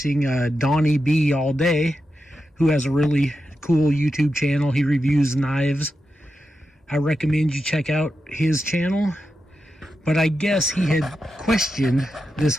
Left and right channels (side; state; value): both; normal; correlation 0.89